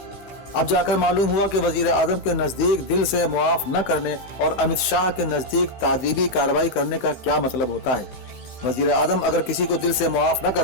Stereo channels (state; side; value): late; right; 15 ms